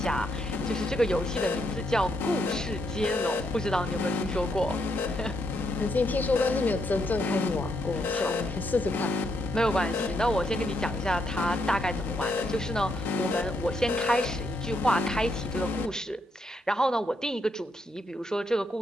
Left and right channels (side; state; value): both; normal; correlation 0.77